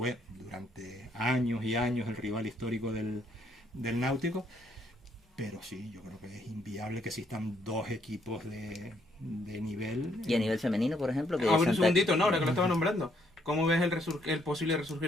durante años y años el rival histórico del Náutico. Pero sí, yo creo que es inviable que existan 2 equipos de nivel. Y a nivel femenino, por ejemplo, que A ver, un Santa- segundito, no, ahora que lo estaba nombrando. ¿Cómo ves el posible resurgir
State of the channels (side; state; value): both; normal; correlation 0.70